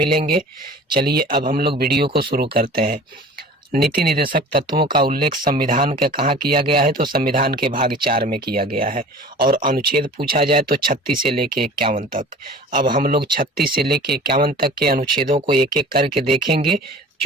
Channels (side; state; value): both; normal; correlation 0.43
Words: चलिए अब हम लोग वीडियो को शुरू करते हैं। नीति निर्देशक तत्वों का उल्लेख संविधान के कहाँ किया गया है, तो संविधान के भाग 4 में किया गया है। और अनुच्छेद पूछा जाए तो 36 से लेके 51 तक। अब हम लोग 36 से लेके 51 तक के अनुच्छेदों को एक एक करके देखेंगे।